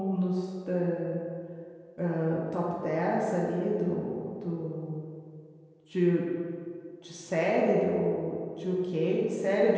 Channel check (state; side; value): identical; both; correlation 1.00